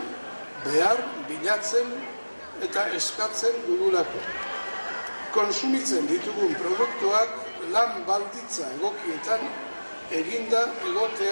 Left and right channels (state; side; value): inverted; both; correlation -1.00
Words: behar bilatzen eta eskatzen dugulako. Konsumitzen ditugun produktuak lan balditza egokietan eginda